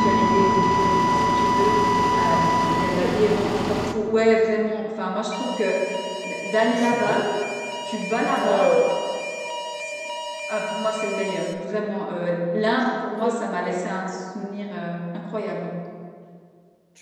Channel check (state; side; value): identical; both; correlation 1.00